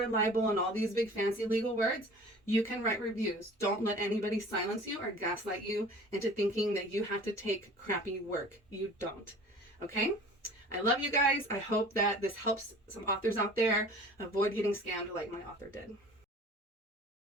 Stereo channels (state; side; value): normal; both; correlation 0.45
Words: libel, and all these big fancy legal words. You can write reviews. Don't let anybody silence you or gaslight you into thinking that you have to take crappy work. You don't. Okay? I love you guys. I hope that this helps some authors out there avoid getting scammed like my author did.